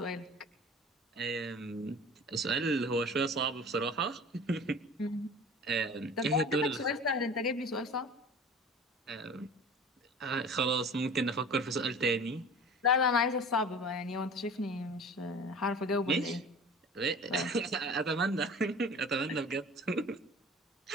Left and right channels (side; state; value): both; normal; correlation 0.41